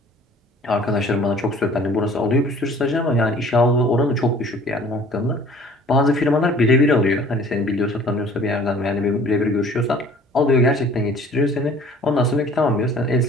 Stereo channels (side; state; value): both; normal; correlation 0.51